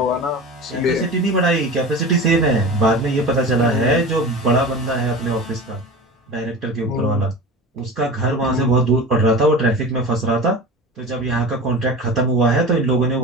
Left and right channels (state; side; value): normal; both; correlation 0.32